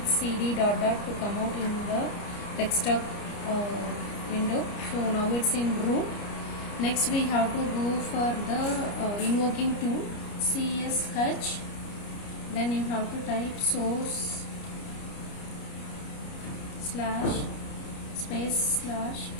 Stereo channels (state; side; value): late; right; 29 ms